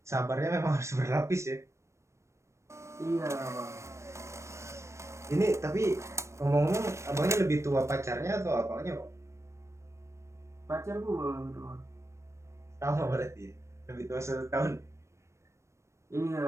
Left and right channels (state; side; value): late; left; 0.14 ms